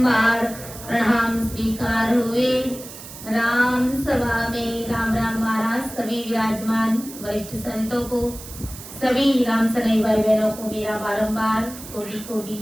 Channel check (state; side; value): noise; right; hiss, 14 dB below the sound